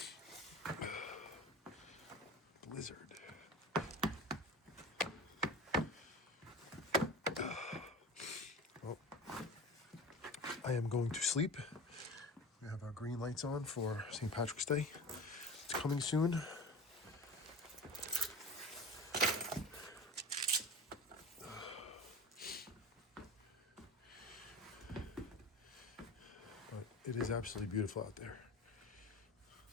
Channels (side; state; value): both; normal; correlation 0.33